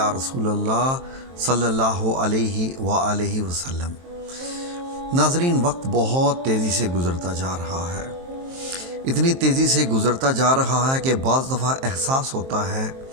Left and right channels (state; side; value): late; left; 23 ms